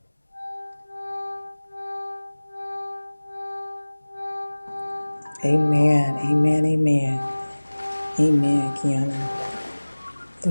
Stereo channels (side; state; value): both; inverted; correlation -1.00